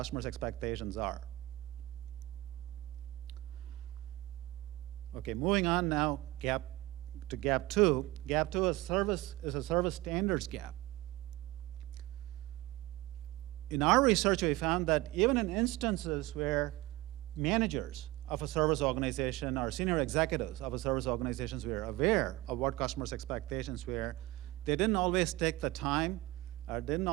expectations are. Okay, moving on now to gap 2. Gap 2 is a service standards gap. In our research, we found that even in instances where managers of a service organization or senior executives of a service organizations were aware of what customers' expectations were, they didn't always take the time or didn't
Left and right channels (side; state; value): left; quieter; 18.7 dB